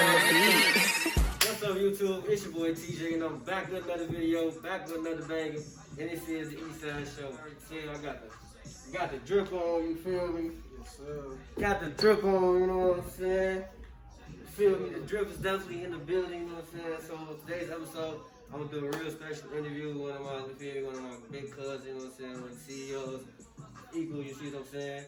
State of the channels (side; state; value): both; identical; correlation 1.00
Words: beat. What's up, YouTube? It's your boy TJ, and I'm back with another video, back with another banger. And this is the Eastside show. Yeah, I got the drip on, you feel me? Yes, sir. Got the drip on, you know what I'm saying? You feel me? The drip is definitely in the building, you know what I'm saying? So today's episode, I'm gonna do a real special interview with one of my big cousins, you know what I'm saying? One of the CEOs, Equal, you see what I'm saying?